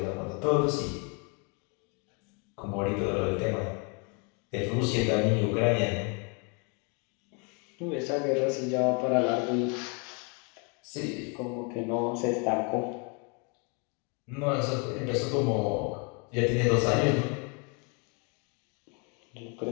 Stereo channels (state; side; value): quieter; right; 34.7 dB